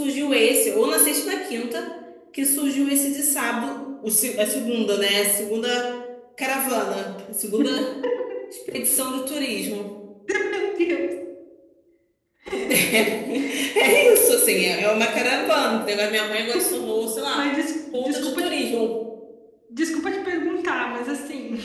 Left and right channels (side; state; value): both; identical; correlation 1.00